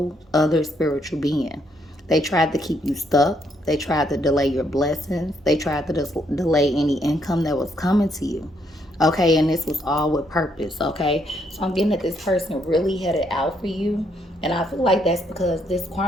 other spiritual being. They tried to keep you stuck. They tried to delay your blessings. They tried to delay any income that was coming to you. Okay, and this was all with purpose. Okay, so I'm getting that this person really had it out for you. And I feel like that's because this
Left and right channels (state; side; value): normal; both; correlation 0.73